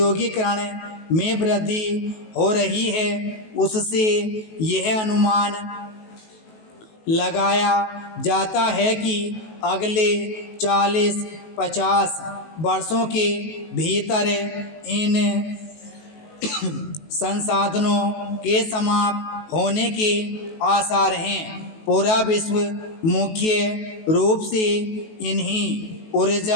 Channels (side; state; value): right; late; 19 ms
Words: में वृद्धि हो रही है, उससे यह अनुमान लगाया जाता है कि अगले 40-50 वर्षों के भीतर इन संसाधनों के समाप्त होने के आसार हैं। पूरा विश्व मुख्य रूप से इन्हीं